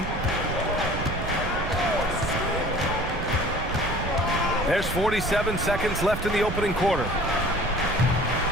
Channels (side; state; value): right; noise; rumble, 6 dB below the sound